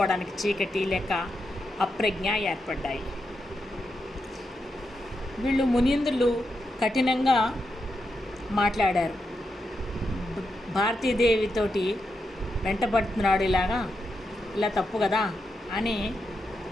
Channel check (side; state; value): both; normal; correlation 0.85